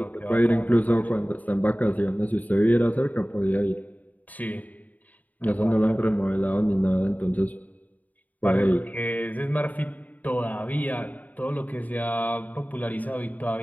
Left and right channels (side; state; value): right; late; 0.077 ms